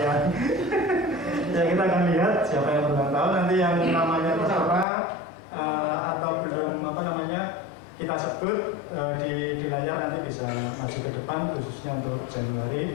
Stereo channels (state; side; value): drops out; right; at 4.9 s